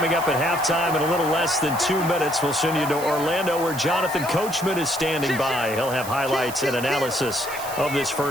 up at halftime in a little less than 2 minutes, we'll send you to Orlando where Jonathan Coachman is standing by. He'll have highlights and analysis of this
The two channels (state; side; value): noise; right; hiss, 12 dB below the sound